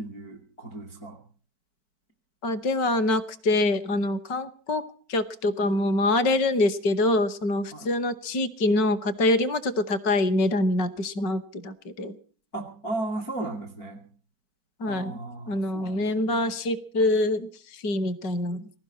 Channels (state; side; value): late; right; 4.6 ms